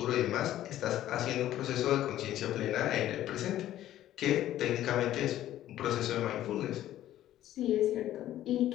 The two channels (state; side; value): quieter; right; 13.0 dB